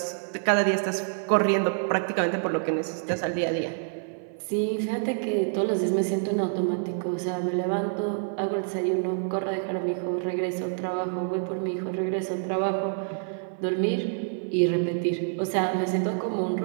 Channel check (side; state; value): left; silent; 55 dB below the other